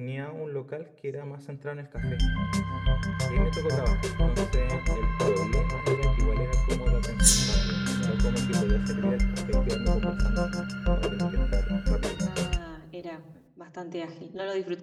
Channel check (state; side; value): identical; both; correlation 1.00